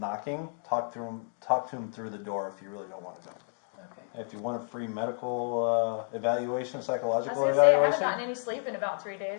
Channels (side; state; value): right; silent; 57 dB below the other